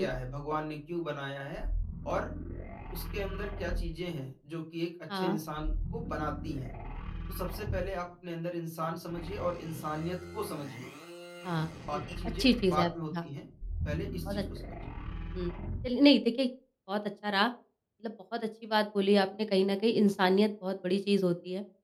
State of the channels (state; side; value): identical; both; correlation 1.00